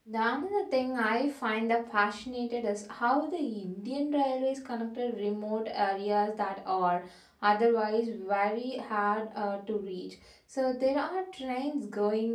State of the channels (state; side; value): identical; both; correlation 1.00